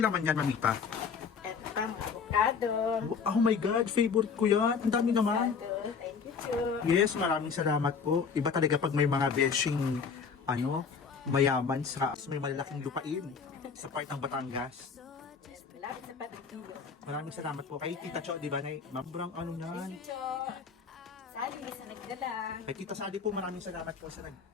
laman yan, Mamita? Ito pang avocado. Oh my God, favorite ko yan. Ang dami naman. Avocado. Thank you, Cho. Yes, maraming salamat po. Iba talaga pag may mga beshing, mayaman sa may malalaking lupain sa part ng Batangas. Malapit sa Patagtulo. Maraming salamat po kay Tita Cho, di ba? Mabrang ano yan. Thank you, Cho. Sally, sa nagdala. Kay Tita Sally po, maraming salamat po sa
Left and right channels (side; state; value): right; quieter; 5.9 dB